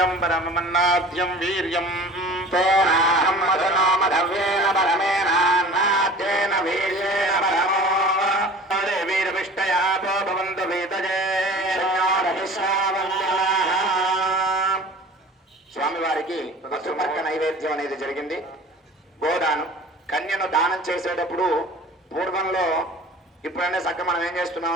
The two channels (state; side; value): normal; both; correlation 0.42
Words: పరమమన్నాద్యం వీర్యం తోనాహం మధునో మధవ్యేన పరమేనాన్నాద్యేన వీర్యేణ పరమో వీరవిష్టయాపో భవంతు వేదజే. స్వామివారికి పశుమర్క నైవేద్యం అనేది జరిగింది. గోదానం కన్యను దానం చేసేటప్పుడు పూర్వంలో ఇప్పుడనే చక్కగా మనం ఏం